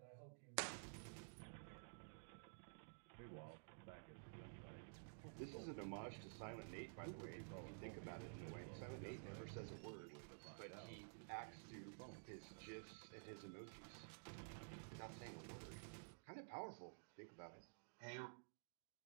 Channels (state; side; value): silent; left; digital silence